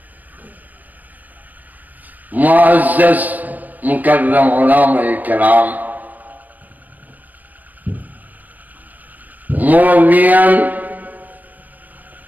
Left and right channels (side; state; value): left; late; 0.082 ms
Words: মুআজ্জাজ মুকাররম উলামায়ে কেরাম, মুরব্বিয়ান,